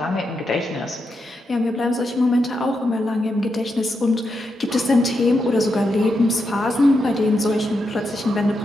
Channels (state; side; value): normal; both; correlation 0.84